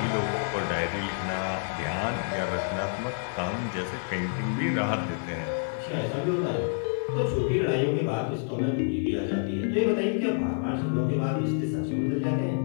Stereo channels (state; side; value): silent; right; digital silence